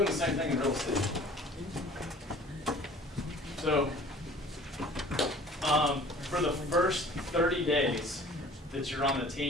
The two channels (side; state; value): both; normal; correlation 0.48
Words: the same thing in real estate. So for the first 30 days that you're on the